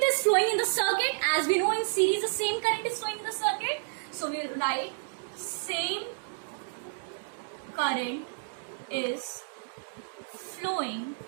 is flowing in the circuit. As we know in series the same current is flowing in the circuit. So we will write same current is flowing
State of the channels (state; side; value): silent; left; digital silence